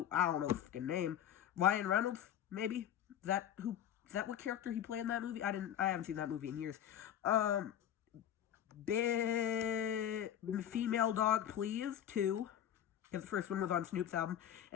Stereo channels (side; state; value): right; quieter; 10.5 dB